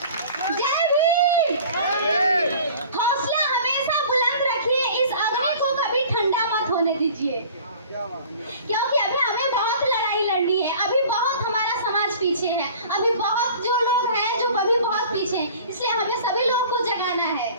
जय भीम। हौसला हमेशा बुलंद रखिए, इस अग्नि को कभी ठंडा मत होने दीजिए, क्योंकि अभी हमें बहुत लड़ाई लड़नी है। अभी बहुत हमारा समाज पीछे है, अभी बहुत जो लोग हैं जो अभी बहुत पीछे हैं, इसलिए हमें सभी लोग को जगाना है।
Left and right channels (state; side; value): inverted; both; correlation -0.45